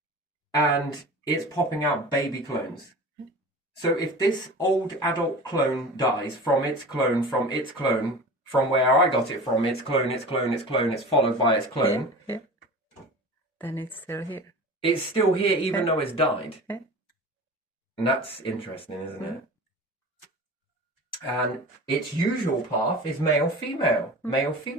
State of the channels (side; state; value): both; normal; correlation 0.36